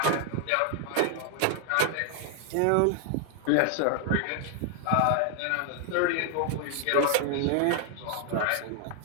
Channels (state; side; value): different; both; correlation 0.00